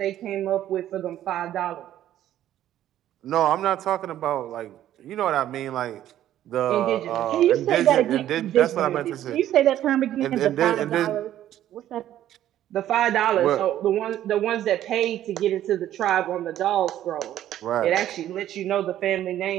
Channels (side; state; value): left; quieter; 12.2 dB